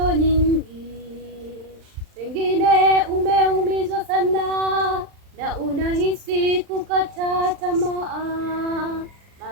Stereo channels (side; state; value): left; late; 39 ms